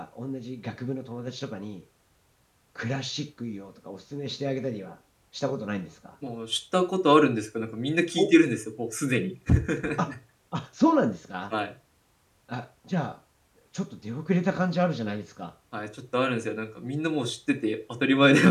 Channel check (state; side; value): identical; both; correlation 1.00